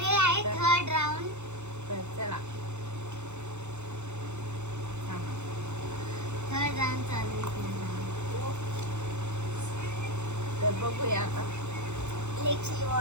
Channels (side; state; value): left; late; 0.83 ms